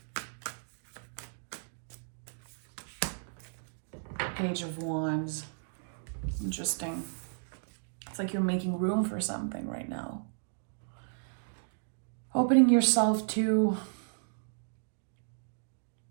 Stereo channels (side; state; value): left; silent; digital silence